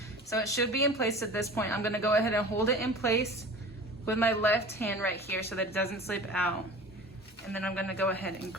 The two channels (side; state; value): both; normal; correlation 0.39